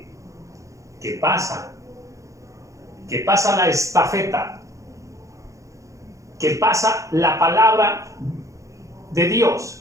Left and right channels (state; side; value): late; left; 0.15 ms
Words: que pasa la estafeta, que pasa la palabra de